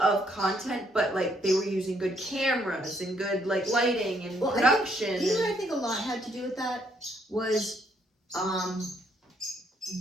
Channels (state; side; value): normal; both; correlation 0.71